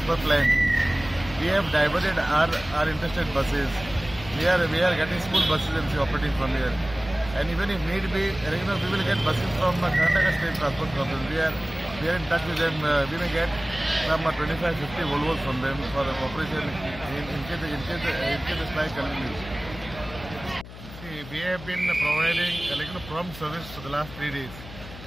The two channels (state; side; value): noise; left; hum, 15 dB below the sound